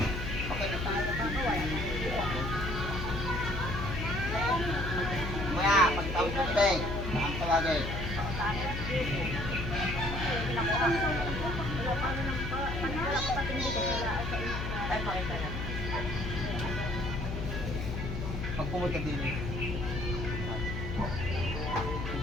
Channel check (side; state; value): left; noise; hum, 4 dB below the sound